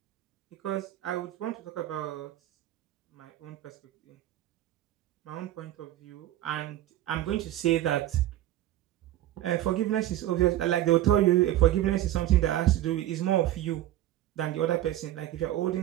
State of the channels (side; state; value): left; quieter; 13.7 dB